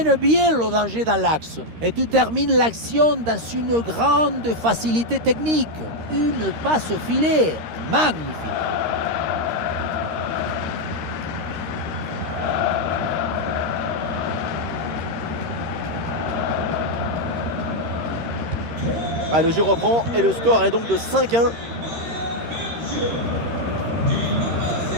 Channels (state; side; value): late; left; 13 ms